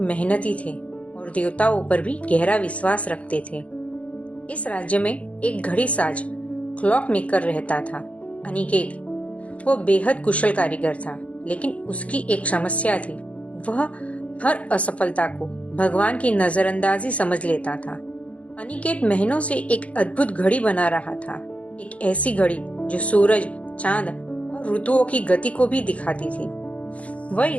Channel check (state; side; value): late; right; 0.065 ms